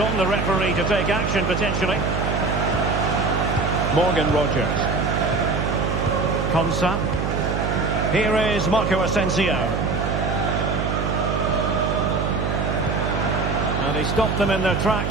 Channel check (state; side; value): noise; right; hum, 1 dB below the sound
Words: the referee to take action potentially. Morgan Rodgers. Konsa. Here is Marco Asensio. And he stopped them in their